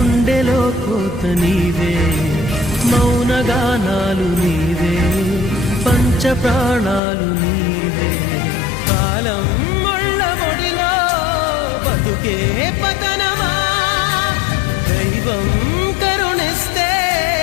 కోత నీవే, మౌనగానాలు నీవే, పంచ ప్రాణాలు నీవే. కాలం ముళ్ళ ఒడిలో బతుకే పతనమా? దైవం కరుణిస్తే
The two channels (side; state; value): right; drops out; at 7.0 s